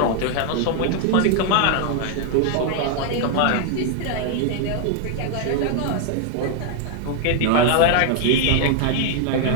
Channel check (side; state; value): both; different; correlation 0.00